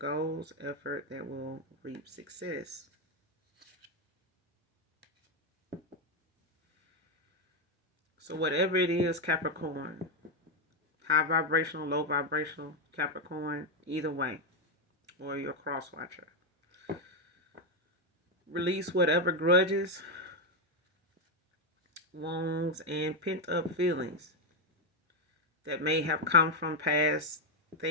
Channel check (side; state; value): both; normal; correlation 0.04